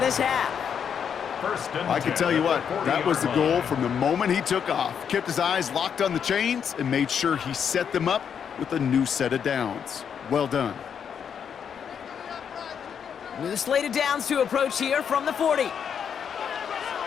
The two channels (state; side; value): quieter; right; 7.6 dB